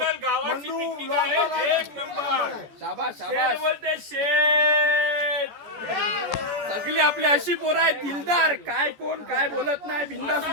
गावाची पिकनिक आहे. 1 नंबर. शाबाश शाबाश. बोलते शेठ. सगळी आपली अशी पोरं आहेत दिलदार. काय कोण काय बोलत नाही. बिंदास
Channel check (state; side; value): late; left; 14 ms